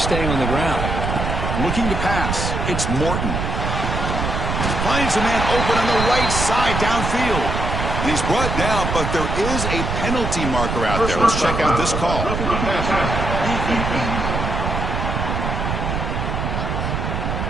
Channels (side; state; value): right; noise; rumble, 2 dB below the sound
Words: on the ground. Looking to pass. It's Morton. Finds a man open on the right side downfield. And he's brought down, but there is a penalty marker out there. Let's check out this call.